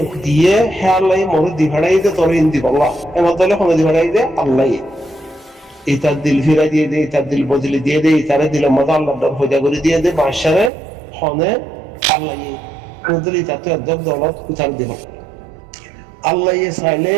দিয়ে হে আল্লাহ মরে দি ভাড়াই দে তোর ইন্দি বললা এমন তাহলে কোনো দি ভাড়াই দে আল্লাহ ইতার দিল ফিরা দিয়ে দে ইতার দিল বদলি দিয়ে দে ইতারে দিলের মতো আল্লাহ ভজা করে দিয়ে দে বাদশারে হনে আল্লাহ কোনদিন ইতা তো একদম দলত উঠার দিব আল্লাহ চাইলে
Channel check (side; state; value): left; drops out; at 10.7 s